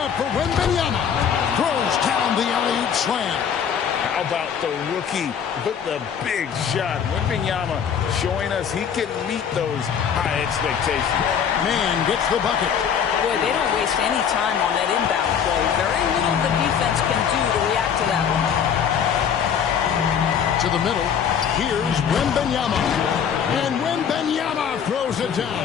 for Wembanyama. Throws down the alley-oop slam. How about the rookie with the big shot? Wembanyama showing us he can meet those high expectations. Man gets the bucket. Boy, they don't waste any time on that inbound play. Very little the defense can do to react to that one. To the middle. Here's Wembanyama. And Wembanyama throws it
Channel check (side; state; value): right; quieter; 7.7 dB